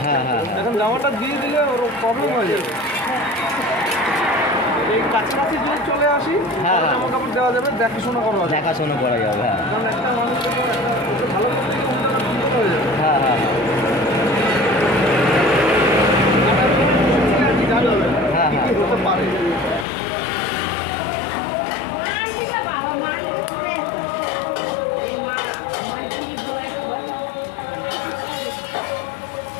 হ্যাঁ, হ্যাঁ, হ্যাঁ। এখন জামাটা দিয়ে দিলে ওর প্রবলেম হয়ে যাবে। এই কাছাকাছি যদি চলে আসি, হ্যাঁ, হ্যাঁ। জামা কাপড় দেওয়া যাবে, দেখাশোনা করা যাবে। দেখাশোনা করা যাবে। হ্যাঁ কারণ একটা মানুষ যখন ওকে ভালো করতে গিয়ে কোনটা না বিপদ হয়ে যাবে। হ্যাঁ হ্যাঁ জানা যাবে হ্যাঁ, কি হ্যাঁ। কি হতে পারে।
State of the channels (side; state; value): right; drops out; at 19.9 s